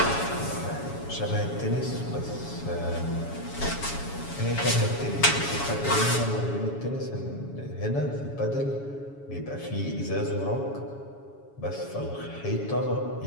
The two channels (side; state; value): right; late; 7.2 ms